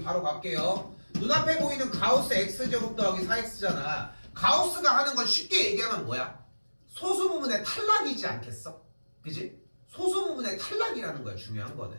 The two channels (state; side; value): inverted; both; correlation -1.00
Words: 바로 갈게요. 눈앞에 보이는 가우스 x제곱 더하기 4x잖아. 가우스가 하는 건 쉽게 얘기하면 뭐야? 소수 부분의 탈락이지 않겠어? 그지? 소수 부분의 탈락이라는 거야. 중요한 거는.